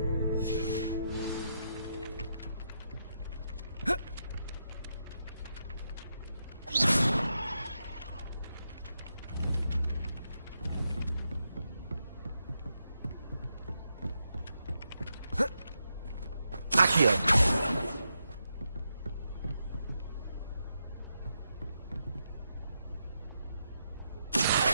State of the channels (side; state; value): both; inverted; correlation -0.83